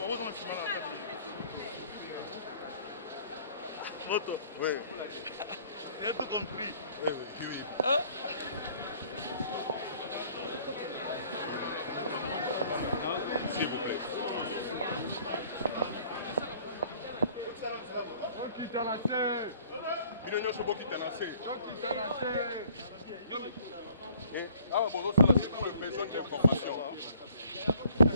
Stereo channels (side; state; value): both; inverted; correlation -0.56